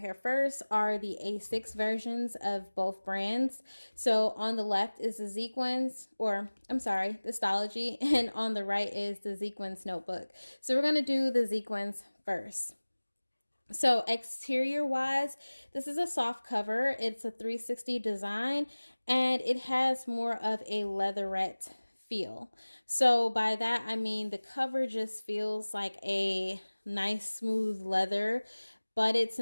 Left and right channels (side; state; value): both; inverted; correlation -1.00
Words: first are the A6 versions of both brands. So on the left is the Zequenze, or I'm sorry, the Stalogy, and on the right is the Zequenze notebook. So we're going to do the Zequenze first. So exterior wise, this is a soft cover. It's a 360 design and it has more of a leatherette feel. So by that I mean the cover just feels like a nice smooth leather, but it's